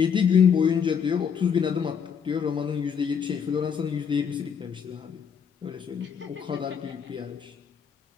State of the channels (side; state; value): right; quieter; 7.1 dB